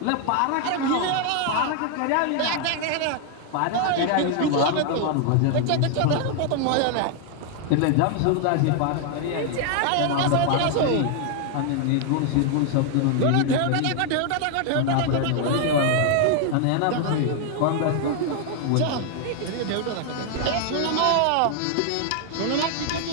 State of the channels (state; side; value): different; both; correlation 0.00